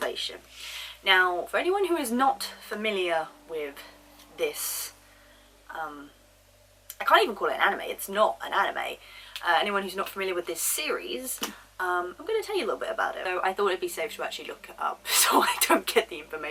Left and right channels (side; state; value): both; identical; correlation 1.00